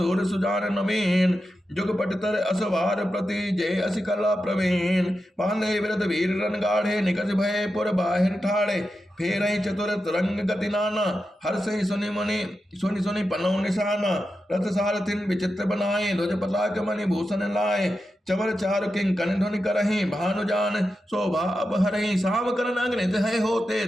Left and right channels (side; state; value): both; normal; correlation 0.90